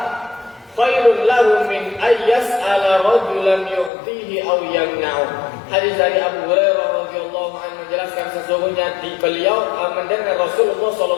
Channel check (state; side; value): drops out; right; at 3.9 s